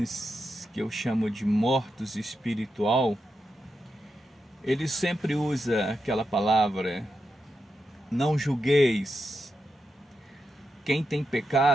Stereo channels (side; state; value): both; normal; correlation 0.87